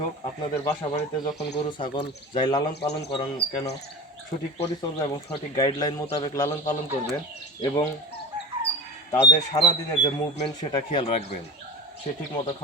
হোক, আপনাদের বাসা বাড়িতে যখন গরু ছাগল যাই লালন পালন করেন কেন, সঠিক পরিচর্যা এবং সঠিক গাইডলাইন মোতাবেক লালন পালন করবেন এবং তাদের সারাদিনের যে মুভমেন্ট সেটা খেয়াল রাখবেন। সে ঠিক মতো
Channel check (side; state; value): both; normal; correlation 0.31